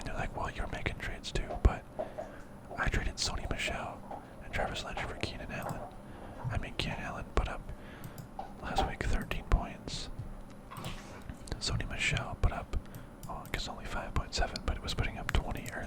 they're like, well, you're making trades too, but I traded Sony Michel and Travis Landry for Keenan Allen. Keenan Allen put up last week 13 points. Sony Michel put up, I guess only 5.7, but it was putting up 20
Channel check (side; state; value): both; identical; correlation 1.00